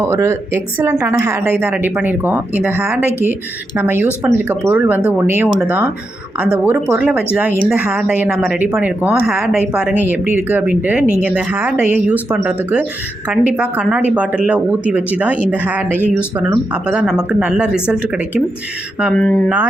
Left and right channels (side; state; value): both; normal; correlation 0.86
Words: ஒரு எக்ஸலண்ட்டான ஹேர் டை தான் ரெடி பண்ணியிருக்கோம். இந்த ஹேர் டைக்கு நம்ம யூஸ் பண்ணியிருக்க பொருள் வந்து ஒன்றே ஒன்று தான். அந்த ஒரு பொருளை வச்சு தான் இந்த ஹேர் டையை நம்ம ரெடி பண்ணியிருக்கோம். ஹேர் டை பாருங்கள் எப்படி இருக்குது அப்படின்ட்டு. நீங்கள் இந்த ஹேர் டையை யூஸ் பண்ணுறதுக்கு கண்டிப்பாக கண்ணாடி பாட்டிலில் ஊற்றி வச்சு தான் இந்த ஹேர் டையை யூஸ் பண்ணணும். அப்போ தான் நமக்கு நல்ல ரிசல்ட் கிடைக்கும்.